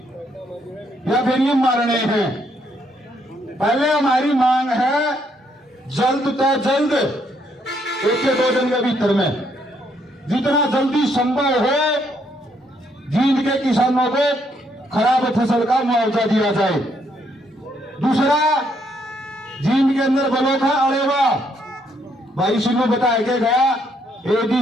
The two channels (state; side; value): normal; both; correlation 0.72